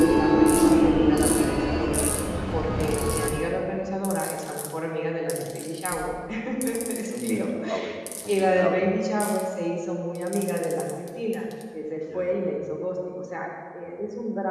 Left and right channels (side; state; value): both; identical; correlation 1.00